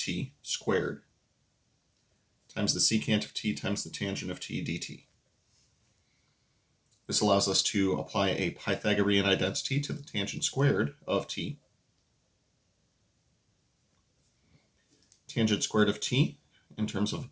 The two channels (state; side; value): identical; both; correlation 1.00